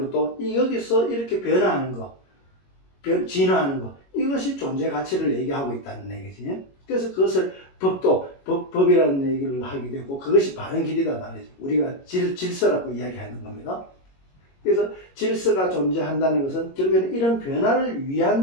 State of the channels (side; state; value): right; late; 22 ms